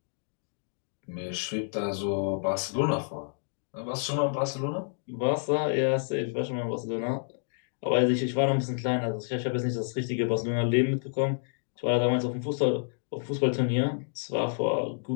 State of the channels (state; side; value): silent; right; digital silence